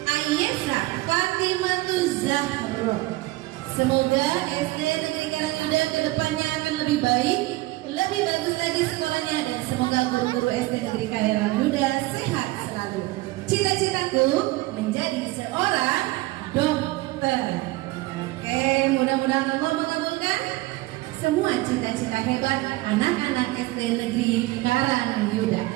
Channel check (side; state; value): left; quieter; 19.5 dB